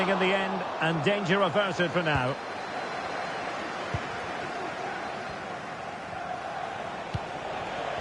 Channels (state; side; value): identical; both; correlation 1.00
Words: in the end, and danger averted for now.